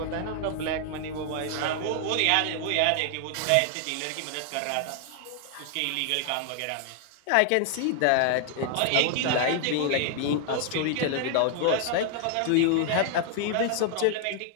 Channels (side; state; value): both; different; correlation 0.00